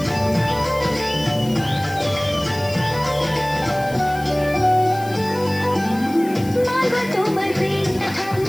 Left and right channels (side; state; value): left; noise; hiss, 18 dB below the sound